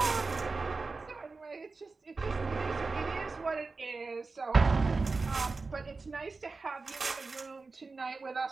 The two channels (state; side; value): quieter; left; 4.0 dB